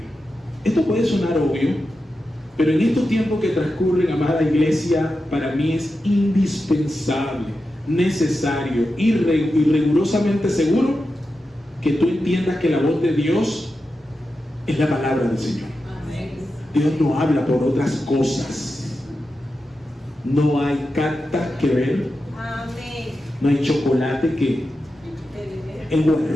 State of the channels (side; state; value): both; normal; correlation 0.90